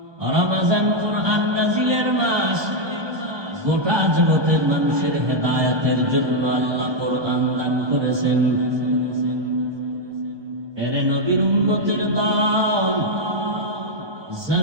রমজান কোরআন নাজিলের মাস। গোটা জগতের মানুষের হেদায়েতের জন্য আল্লাহ কোরআন দান করেছেন। এরে নবীর উম্মতের দল,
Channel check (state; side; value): late; left; 1.2 ms